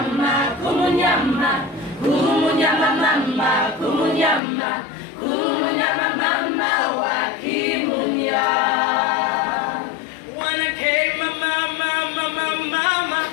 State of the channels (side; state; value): right; drops out; at 4.4 s